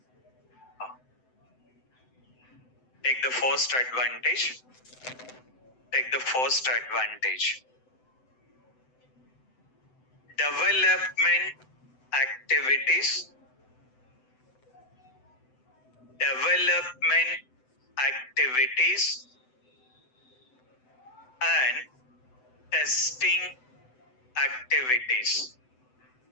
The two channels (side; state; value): right; late; 7.9 ms